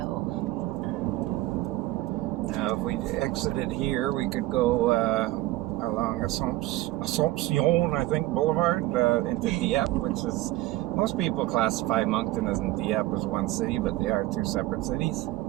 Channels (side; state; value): left; quieter; 17.3 dB